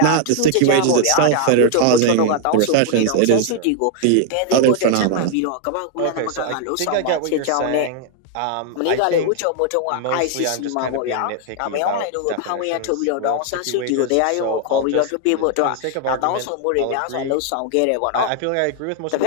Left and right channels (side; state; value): both; different; correlation 0.00